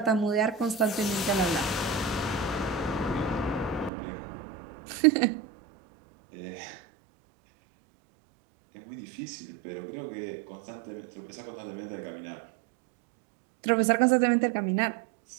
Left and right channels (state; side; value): drops out; left; at 3.9 s